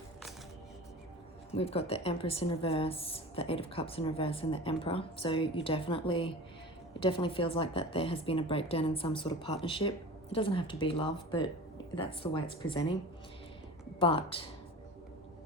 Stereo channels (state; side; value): normal; both; correlation 0.35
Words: We've got the Empress in reverse, the Eight of Cups in reverse, and the Emperor. So it definitely feels like that there has been a breakdown in some sort of partnership. It doesn't have to be love, but that's the way it's presenting. But